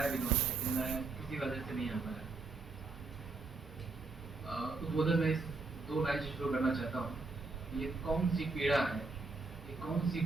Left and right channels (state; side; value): quieter; left; 3.8 dB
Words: भी उन्होंने, लेकिन मैं किसी वजह से नहीं आ पाया। उद्बोधन में इस 2 लाइन से शुरू करना चाहता हूँ। ये कौन सी पीड़ा है, ये कौन सी